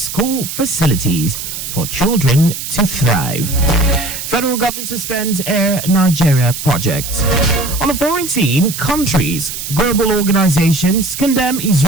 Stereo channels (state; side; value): noise; right; hiss, 7 dB below the sound